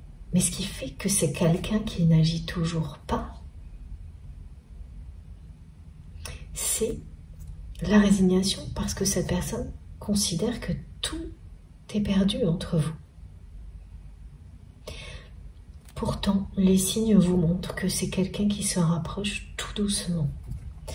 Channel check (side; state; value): both; identical; correlation 1.00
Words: Mais ce qui fait que c'est quelqu'un qui n'agit toujours pas, c'est la résignation, parce que cette personne considère que tout est perdu entre vous. Pourtant, les signes vous montrent que c'est quelqu'un qui se rapproche tout doucement.